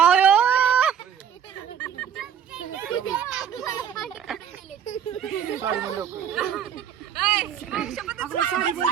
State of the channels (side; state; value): left; quieter; 8.6 dB